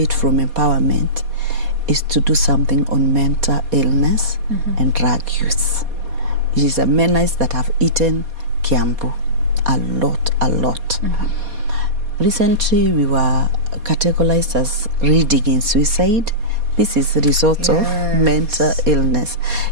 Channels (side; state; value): left; late; 4.2 ms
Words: from empowerment is to do something on mental illness and drug use. It is a menace that have eaten Kiambu a lot. Recently, we were categorized as reading in suicide. This is the result of mental illness.